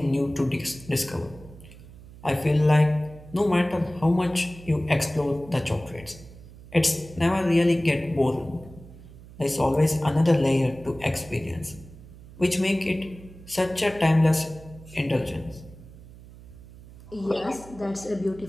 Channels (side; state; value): right; noise; hum, 19 dB below the sound